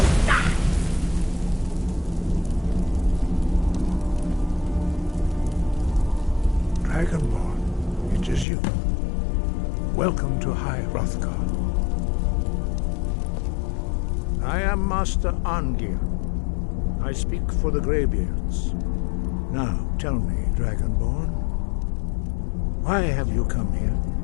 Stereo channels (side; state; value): right; drops out; at 8.5 s